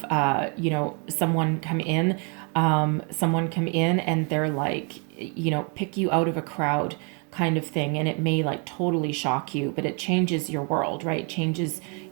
someone come in, and they're like, pick you out of a crowd kind of thing, and it may like totally shock you, but it changes your world, right? Changes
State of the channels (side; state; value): left; quieter; 36.1 dB